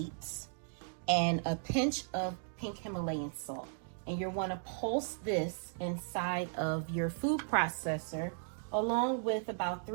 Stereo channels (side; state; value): left; silent; digital silence